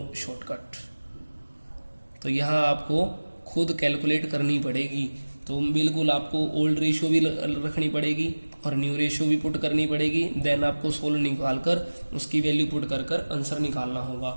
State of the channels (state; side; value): inverted; both; correlation -1.00